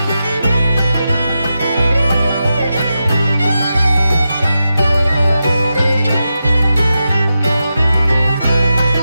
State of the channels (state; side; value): inverted; both; correlation -0.89